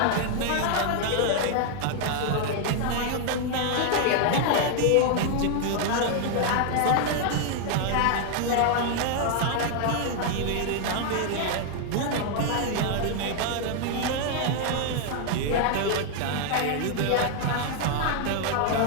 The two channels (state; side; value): different; both; correlation 0.00